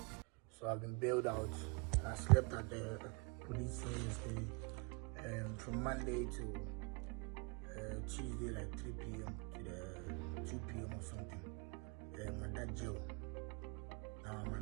So I've been bailed out and I slept at the police cell yesterday from Monday to Tuesday, like 3 p.m. to the 2 p.m. or something. My dad jail. Now I'm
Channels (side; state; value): left; quieter; 32.0 dB